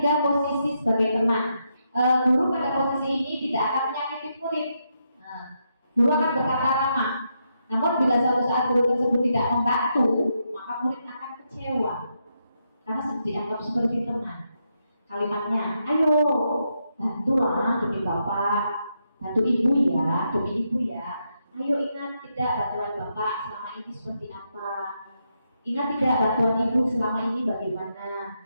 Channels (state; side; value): inverted; both; correlation -0.81